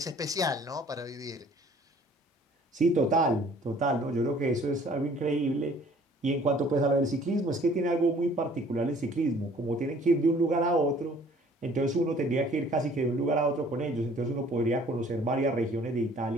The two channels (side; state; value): both; normal; correlation 0.55